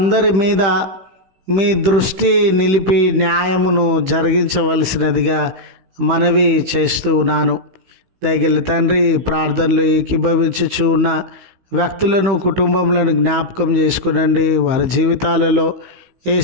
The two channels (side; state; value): left; late; 15 ms